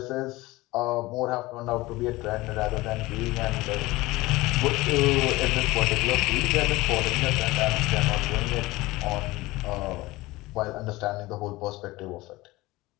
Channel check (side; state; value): right; quieter; 19.9 dB